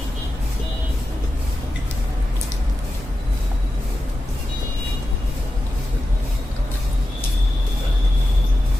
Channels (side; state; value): both; normal; correlation 0.91